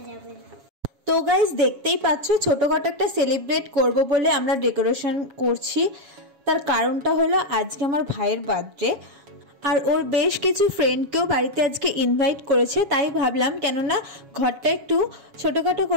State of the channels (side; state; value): left; late; 7.2 ms